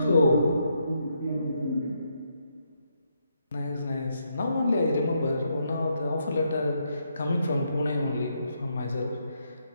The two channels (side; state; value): both; inverted; correlation -0.78